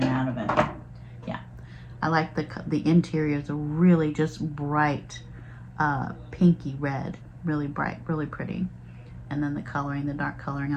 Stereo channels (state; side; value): identical; both; correlation 1.00